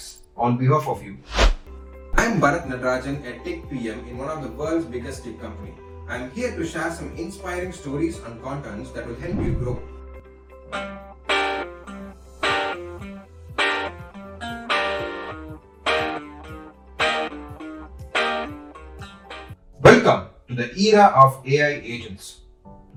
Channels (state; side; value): identical; both; correlation 1.00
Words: on behalf of you. I'm Barath, a tech PM in one of the world's biggest tech company. I'm here to share some inspiring stories and contents that will help you grow. Welcome to the era of AI agents.